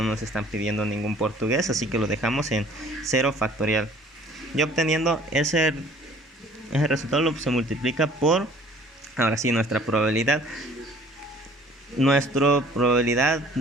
nos están pidiendo ningún portugués, así que lo dejamos en 0 factorial. Y obteniendo ese resultado se multiplica por, ahora sí, nuestra probabilidad. Nuestra probabilidad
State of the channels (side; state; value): both; normal; correlation 0.53